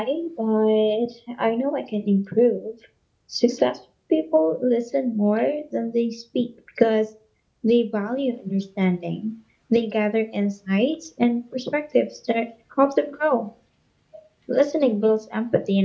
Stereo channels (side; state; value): both; identical; correlation 1.00